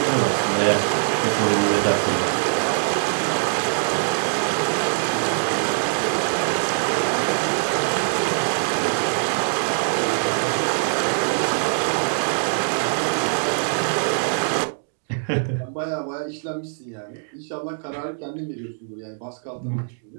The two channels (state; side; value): silent; left; digital silence